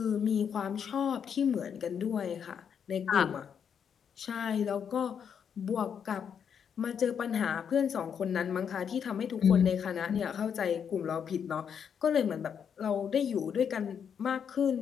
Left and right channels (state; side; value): quieter; right; 7.6 dB